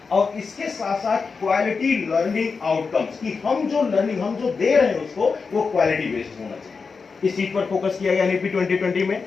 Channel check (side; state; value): right; quieter; 4.9 dB